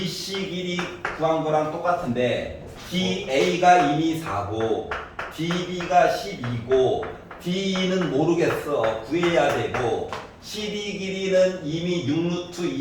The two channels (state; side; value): identical; both; correlation 1.00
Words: 길이 구한 거랑 똑같은데 DA가 이미 4고 DB가 12고 DE는 모르겠어. 구해야 되고 CD 길이는 이미 6루트